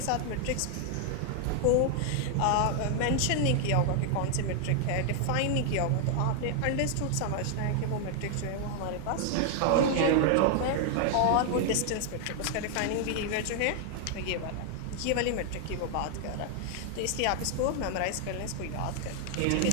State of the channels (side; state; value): both; different; correlation 0.00